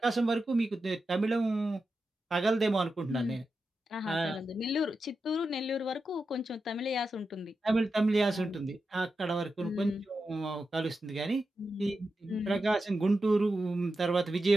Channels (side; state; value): both; normal; correlation 0.90